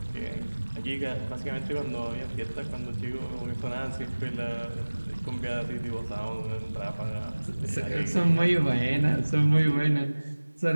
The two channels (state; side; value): inverted; both; correlation -1.00